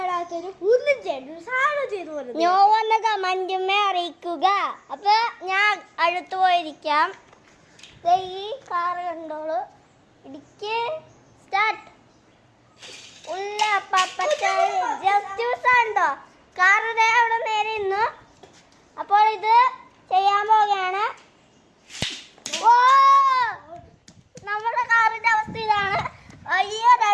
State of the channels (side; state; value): both; identical; correlation 1.00